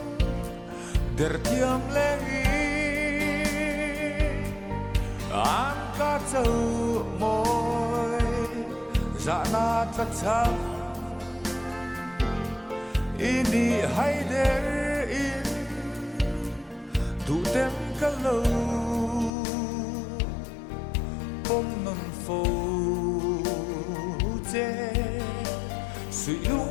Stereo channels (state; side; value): drops out; right; at 19.3 s